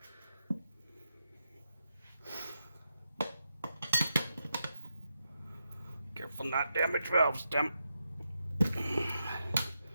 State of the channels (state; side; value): inverted; both; correlation -0.85